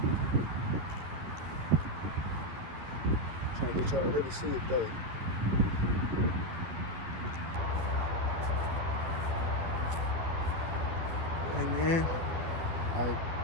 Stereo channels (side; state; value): left; late; 11 ms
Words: Trying to get y'all to really see it though. Hey man, like